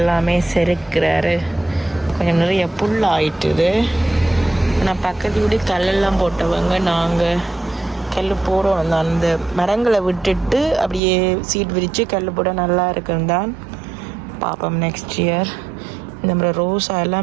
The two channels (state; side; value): drops out; left; at 11.0 s